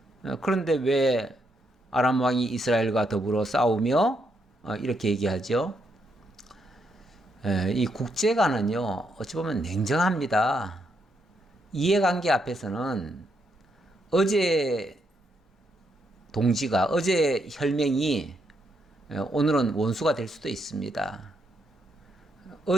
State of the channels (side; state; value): both; normal; correlation 0.78